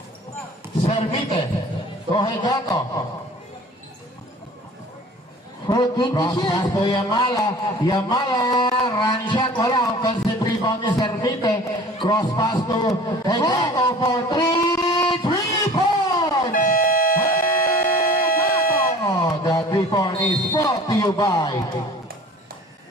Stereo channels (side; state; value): both; normal; correlation 0.45